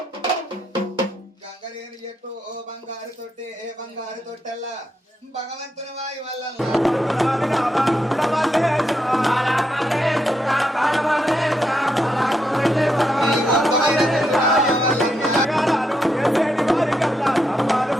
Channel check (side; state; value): both; normal; correlation 0.81